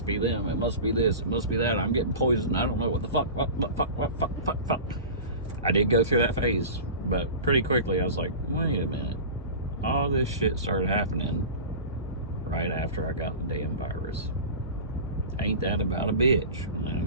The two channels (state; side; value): inverted; both; correlation -0.33